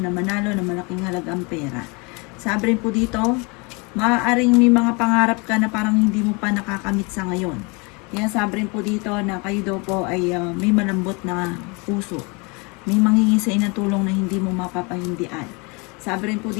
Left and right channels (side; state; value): right; quieter; 29.5 dB